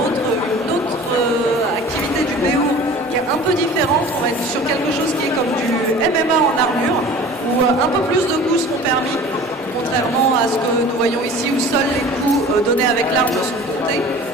autre activité du BO qui est un peu différente. On va être sur quelque chose qui est comme du MMA en armure, où un peu plus de coups seront permis, contrairement à ce que nous voyons ici, où seuls les coups donnés avec l'arme sont comptés.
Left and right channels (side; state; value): both; normal; correlation 0.42